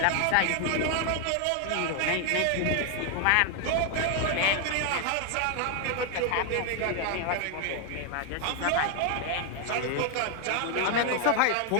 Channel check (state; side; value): different; both; correlation 0.00